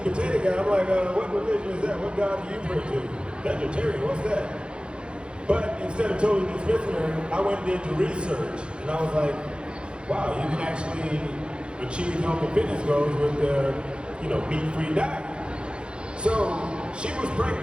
potato guy, I'm like, what religion is that? What God do you pray to? Vegetarian, what's that? But instead of totally dismissing her, I went and did the research, and I was like, wow, you can actually achieve health and fitness goals with the, meat-free diet. So she was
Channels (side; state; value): left; late; 0.055 ms